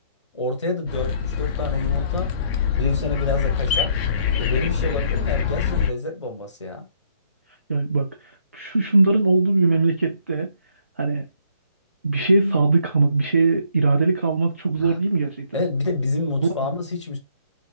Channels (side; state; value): both; inverted; correlation -0.69